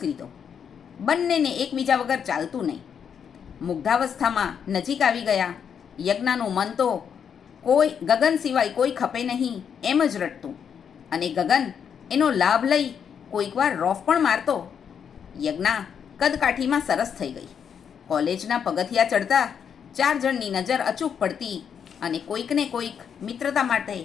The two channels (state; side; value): quieter; right; 7.6 dB